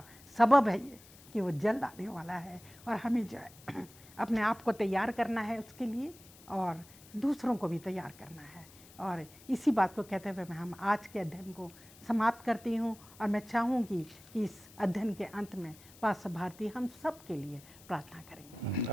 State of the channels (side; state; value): left; noise; hiss, 22 dB below the sound